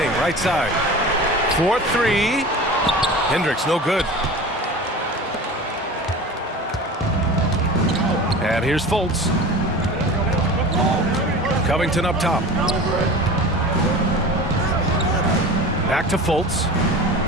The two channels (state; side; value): normal; both; correlation 0.35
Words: right side. 4-3. Hendricks, no good. And here's Fultz. Covington up top. Back to Fultz.